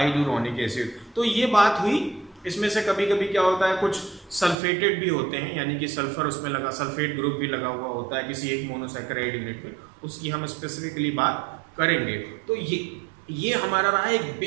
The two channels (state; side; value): drops out; left; at 4.5 s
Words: acid. तो ये बात हुई। इसमें से कभी कभी क्या होता है, कुछ सल्फेटेड भी होते हैं, यानी कि सल्फर उसमें लगा, सल्फेट ग्रुप भी लगा हुआ होता है किसी एक मोनोसैकेराइड यूनिट में, उसकी हम स्पेसिफिकली बात करेंगे। तो ये हमारा रहा एक